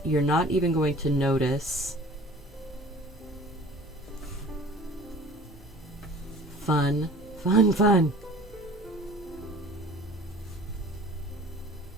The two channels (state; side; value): normal; both; correlation 0.46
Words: you're not even going to notice. Fun, fun, fun.